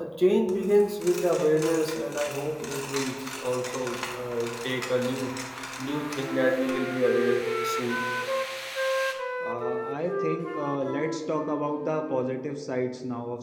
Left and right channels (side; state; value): both; identical; correlation 1.00